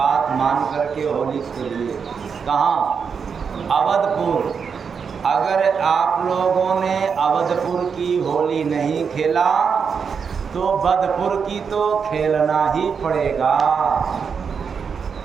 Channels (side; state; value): left; quieter; 6.2 dB